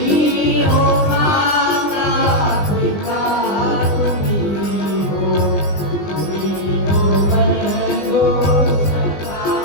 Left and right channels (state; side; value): late; right; 20 ms